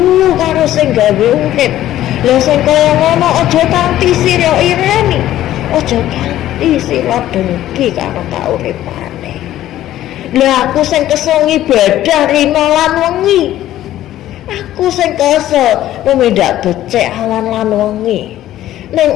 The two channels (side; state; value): right; quieter; 13.4 dB